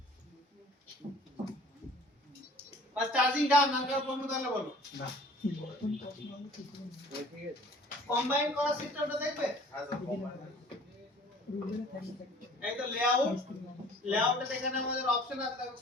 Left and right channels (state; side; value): normal; both; correlation 0.50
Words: বাস চার্জিং ডান নাকার প্রশ্ন তাহলে বলো না কম্বাইন করা সিস্টেমটা দেখবে এই তো লেআউটে এখানে আমাদের অপশন আছে দেখো